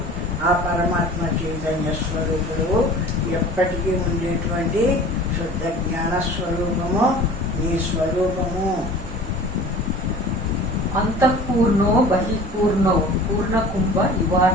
ఆ పరమాత్మ చైతన్య స్వరూపుడు, ఎప్పటికీ ఉండేటువంటి శుద్ధ జ్ఞాన స్వరూపము నీ స్వరూపము. అంతఃపూర్ణో బహిఃపూర్ణో పూర్ణకుంభ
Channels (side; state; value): both; normal; correlation 0.43